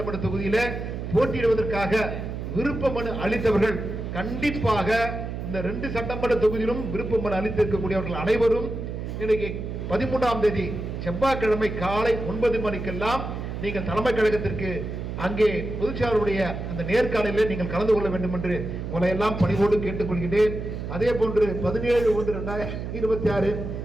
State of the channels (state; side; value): noise; right; hum, 6 dB below the sound